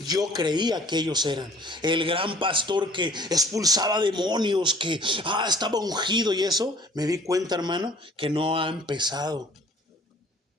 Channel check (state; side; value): normal; both; correlation 0.53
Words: creía que ellos eran. El gran pastor que expulsaba demonios, que estaba ungido y eso. Me di cuenta, hermano, que no ha empezado.